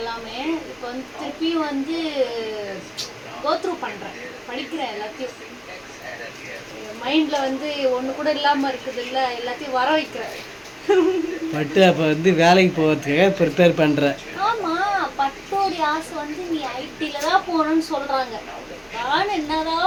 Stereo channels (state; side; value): identical; both; correlation 1.00